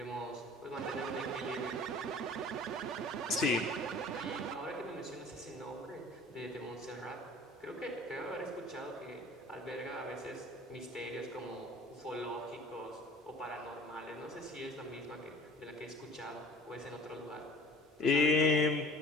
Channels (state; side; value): normal; both; correlation 0.46